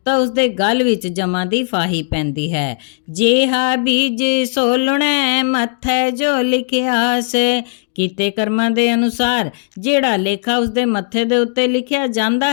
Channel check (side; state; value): right; silent; digital silence